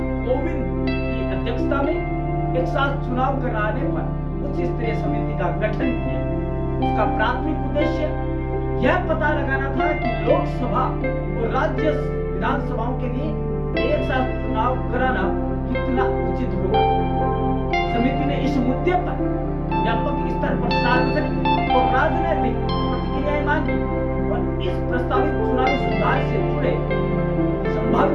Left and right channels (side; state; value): both; identical; correlation 1.00